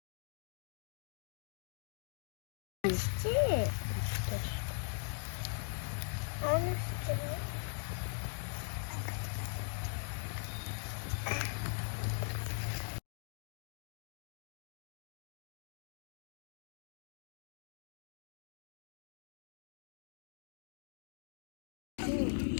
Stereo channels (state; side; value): silent; right; digital silence